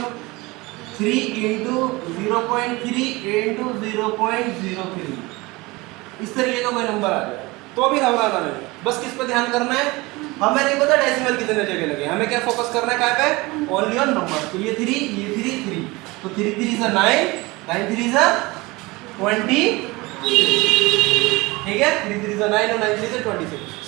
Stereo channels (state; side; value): quieter; left; 22.9 dB